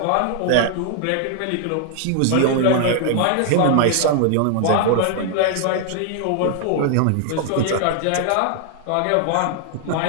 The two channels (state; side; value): different; both; correlation 0.00